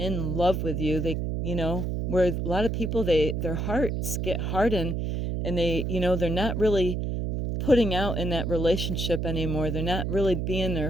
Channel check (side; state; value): right; noise; hum, 1 dB below the sound